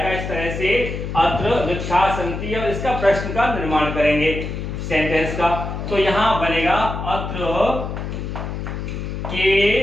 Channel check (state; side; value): noise; left; hum, 5 dB below the sound